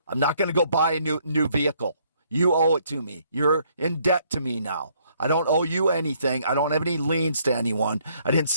I'm not going to go buy a new vehicle. You owe it to me. You're in debt to me now. I don't owe you anything. I don't have any liens to anyone. I didn't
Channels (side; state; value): both; inverted; correlation -0.67